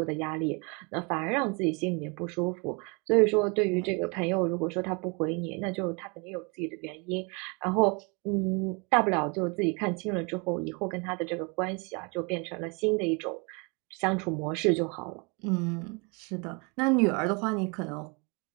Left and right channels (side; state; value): left; quieter; 31.5 dB